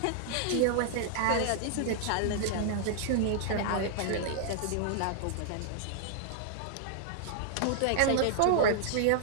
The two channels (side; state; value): both; different; correlation -0.01